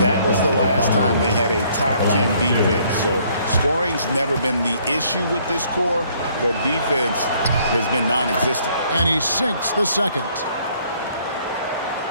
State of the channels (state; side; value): inverted; both; correlation -0.64